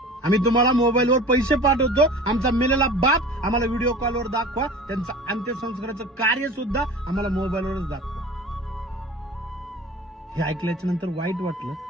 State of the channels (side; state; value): both; normal; correlation 0.39